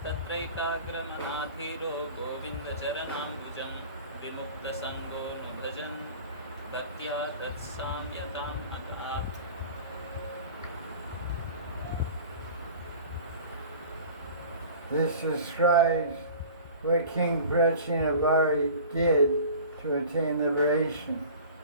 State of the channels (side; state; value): both; inverted; correlation -0.42